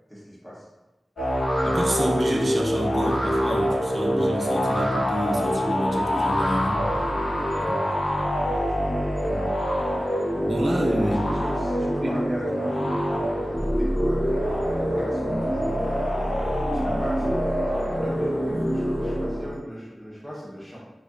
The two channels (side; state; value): both; normal; correlation 0.95